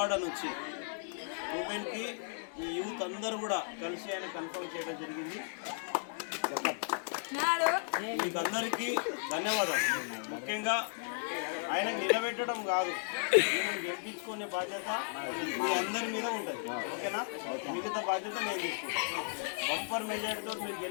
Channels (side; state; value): right; silent; digital silence